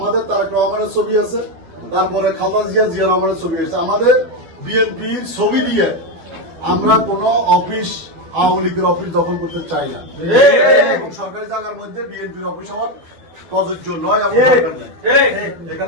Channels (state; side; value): late; left; 12 ms